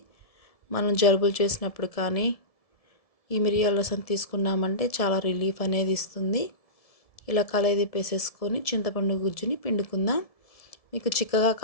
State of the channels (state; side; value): late; right; 1.7 ms